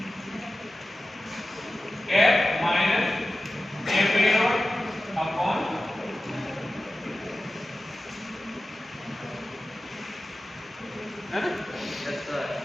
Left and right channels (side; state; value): both; normal; correlation 0.95